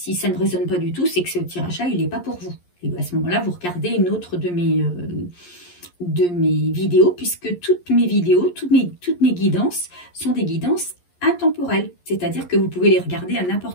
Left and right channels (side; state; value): right; late; 11 ms